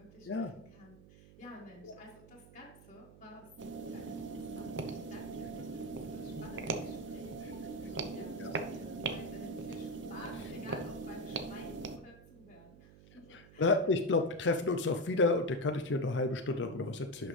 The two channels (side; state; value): right; noise; hum, 21 dB below the sound